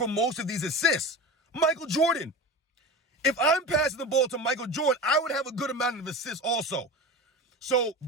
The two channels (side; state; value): both; normal; correlation 0.29